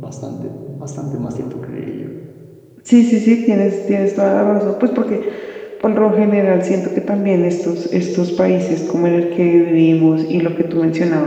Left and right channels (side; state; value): both; identical; correlation 1.00